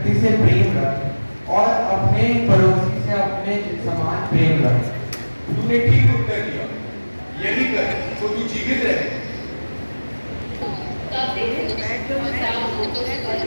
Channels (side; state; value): both; inverted; correlation -1.00